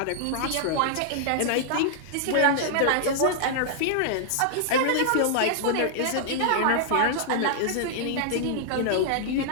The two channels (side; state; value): both; different; correlation -0.01